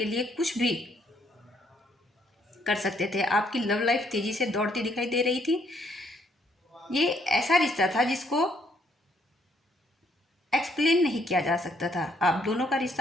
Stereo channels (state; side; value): normal; both; correlation 0.69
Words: लिए कुछ भी कर सकते थे। आपकी लव लाइफ तेजी से दौड़ती दिखाई दे रही थी। ये ऐसा रिश्ता था जिसको एक्सप्लेन नहीं किया जा सकता था। आप दोनों का